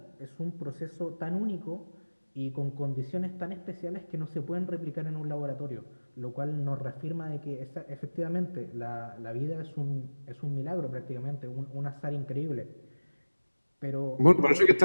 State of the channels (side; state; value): both; inverted; correlation -1.00